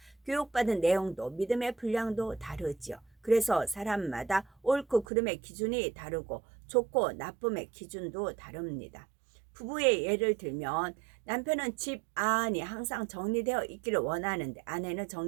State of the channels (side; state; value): left; drops out; at 5.1 s